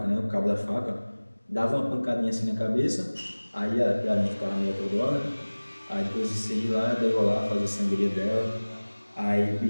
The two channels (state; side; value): inverted; both; correlation -1.00